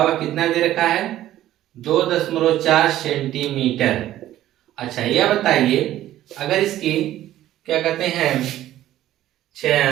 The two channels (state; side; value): quieter; left; 13.5 dB